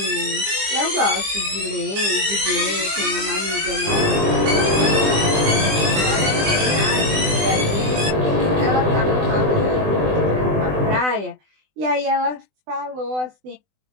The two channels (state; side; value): late; left; 20 ms